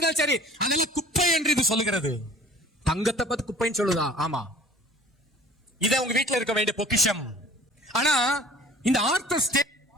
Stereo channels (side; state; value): both; normal; correlation 0.49